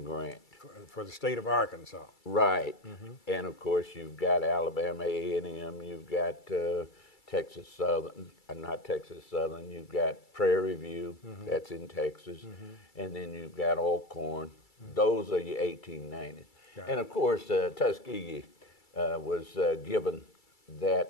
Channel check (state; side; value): late; right; 2.3 ms